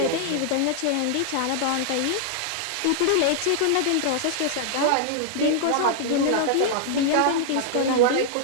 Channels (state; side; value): different; both; correlation -0.01